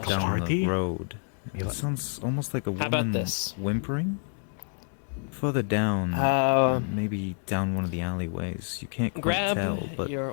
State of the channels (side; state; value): right; silent; 59 dB below the other